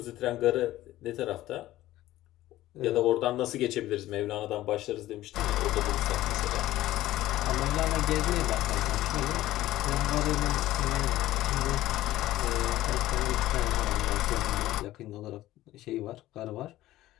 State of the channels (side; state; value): right; quieter; 15.4 dB